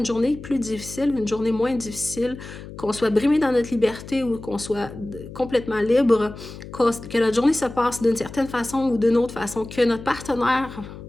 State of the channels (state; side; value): noise; left; hum, 14 dB below the sound